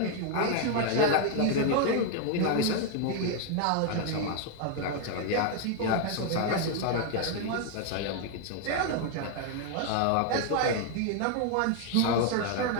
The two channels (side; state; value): both; different; correlation 0.00